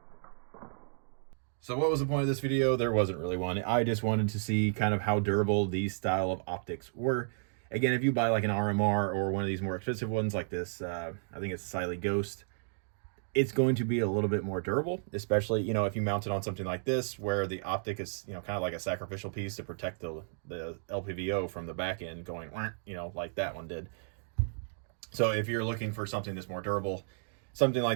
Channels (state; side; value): silent; left; digital silence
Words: So what was the point of this video? There wasn't really one. I just wanted to see kind of how durable these style of optics were. Again, if you buy like an RMR or one of these more expensive ones like this, I think it's Cylee Ghost, it's going to be a little bit more durable, especially, you know, if you mount it on something like this, where the optic is, you know, kind of like a sacrificial piece to protect the LPVO from the back end going, you know, like that one did. So if you're looking for something that's more durable, something